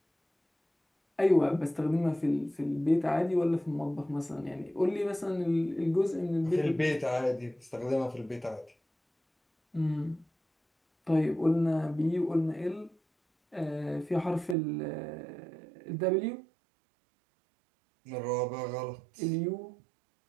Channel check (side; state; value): left; drops out; at 14.6 s